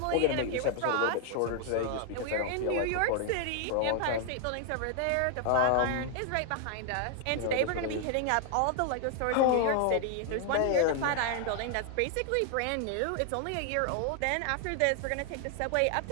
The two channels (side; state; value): both; different; correlation 0.00